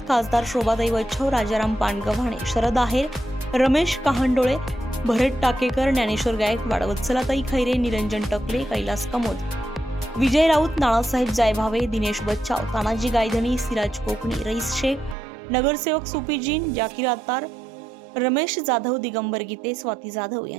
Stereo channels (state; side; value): drops out; left; at 15.2 s